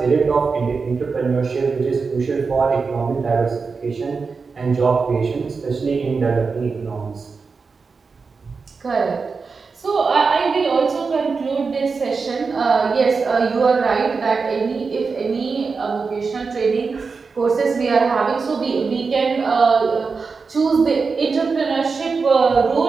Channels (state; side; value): quieter; left; 4.8 dB